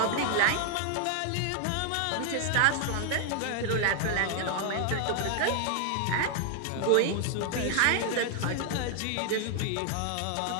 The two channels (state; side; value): different; both; correlation 0.00